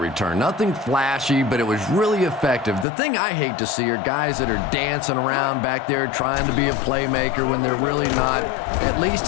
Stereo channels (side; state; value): right; drops out; at 2.9 s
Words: Nothing flashy, but it was really effective. The thing I hate to see are guys that are dancing around back there trying to be a playmaker when they're really not. At least